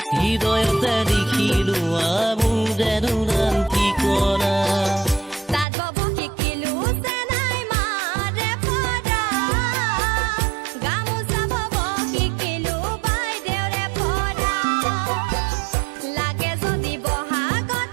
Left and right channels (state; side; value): drops out; left; at 5.7 s